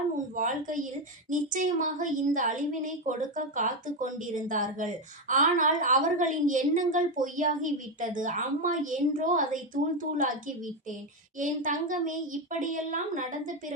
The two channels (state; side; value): normal; both; correlation 0.09